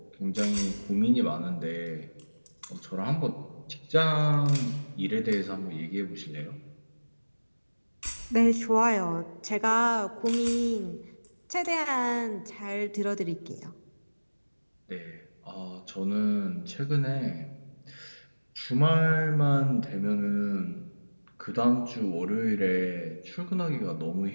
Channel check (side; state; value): both; inverted; correlation -1.00